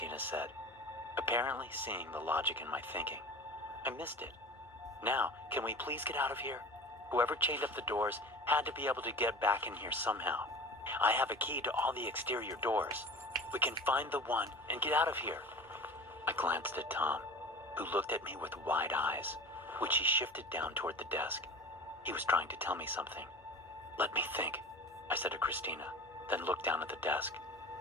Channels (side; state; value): both; normal; correlation 0.35